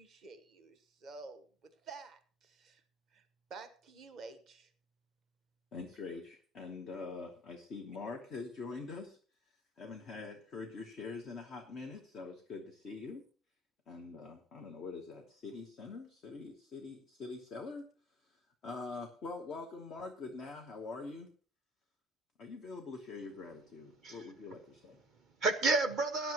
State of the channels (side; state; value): both; normal; correlation 0.49